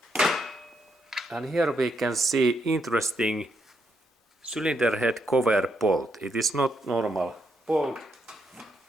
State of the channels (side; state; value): both; normal; correlation 0.79